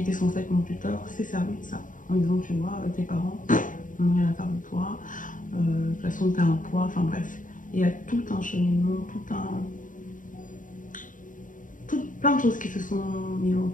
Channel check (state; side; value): late; right; 0.38 ms